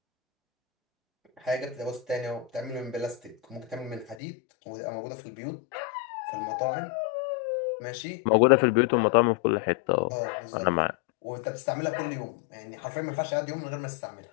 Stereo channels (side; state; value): right; drops out; at 4.2 s